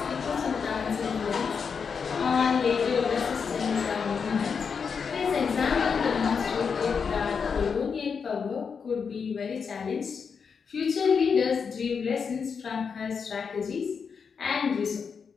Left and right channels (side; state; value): right; quieter; 6.0 dB